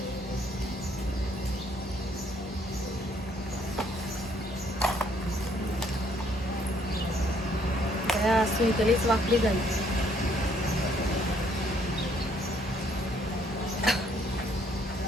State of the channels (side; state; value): both; normal; correlation 0.66